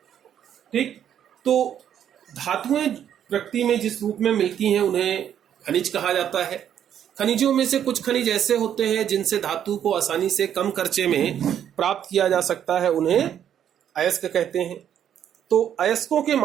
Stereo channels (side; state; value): left; quieter; 9.6 dB